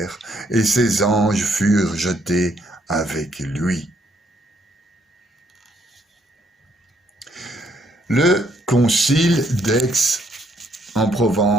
et ses anges furent jetés avec lui. Le concile d'Aix en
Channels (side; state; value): both; normal; correlation 0.70